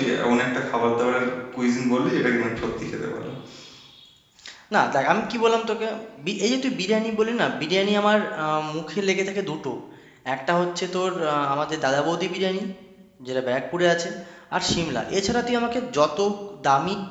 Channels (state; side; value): identical; both; correlation 1.00